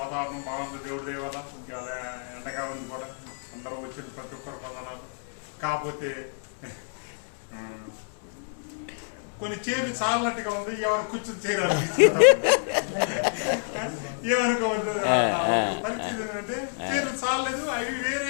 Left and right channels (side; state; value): right; silent; 59 dB below the other